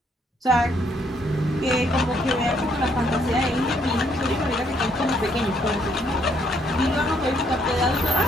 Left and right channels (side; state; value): both; normal; correlation 0.70